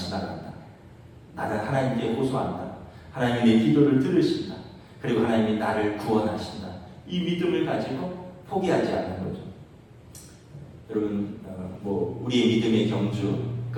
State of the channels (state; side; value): identical; both; correlation 1.00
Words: 나는 하나님께 호소한다. 하나님이 내 기도를 들으신다. 그리고 하나님이 나를 구원하신다. 이 믿음을 가지고 포기하지 않는 거죠. 여러분 뭐 우리의 믿음의 경주